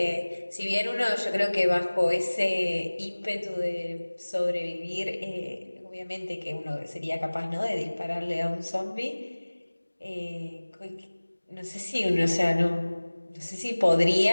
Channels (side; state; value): both; inverted; correlation -1.00